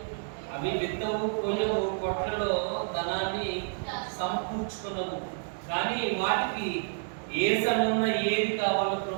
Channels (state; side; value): silent; left; 58 dB below the other